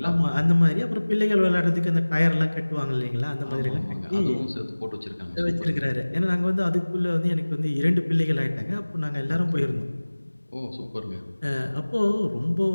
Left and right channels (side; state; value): both; inverted; correlation -1.00